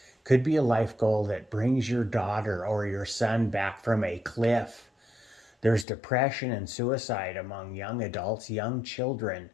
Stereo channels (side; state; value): right; drops out; at 5.9 s